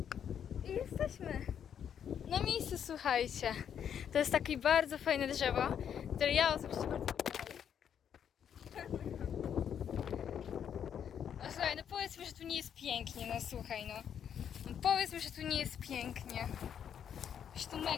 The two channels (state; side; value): quieter; right; 8.6 dB